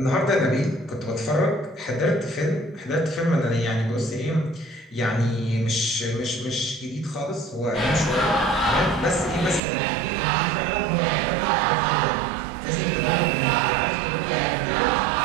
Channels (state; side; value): drops out; left; at 9.6 s